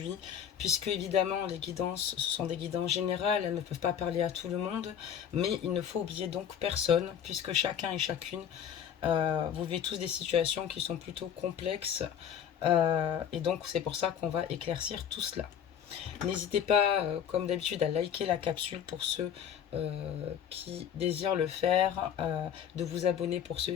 puisque évidemment les guidances, ce sont des guidances générales, elles ne peuvent pas parler à tout le monde, mais il ne faut oublier donc personne, puisque chacun et chacune, vous vivez tous des situations qui sont plutôt complexes, et donc c'est pour ça qu'on va éclaircir tout cela. N'hésitez pas, comme d'habitude, à liker la capsule pour ceux qui désirent le faire, de vous abonner pour ceux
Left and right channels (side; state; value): right; quieter; 8.8 dB